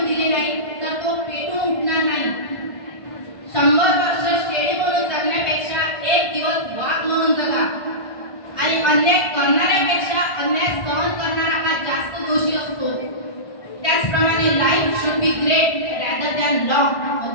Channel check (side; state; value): right; late; 1.5 ms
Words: दिली नाही तर तो पेटून उठणार नाही। 100 वर्ष शेळी म्हणून जगण्यापेक्षा एक दिवस वाघ म्हणून जगा आणि अन्याय करणाऱ्यापेक्षा अन्याय सहन करणारा हा जास्त दोषी असतो। त्याचप्रमाणे life should be great rather than long,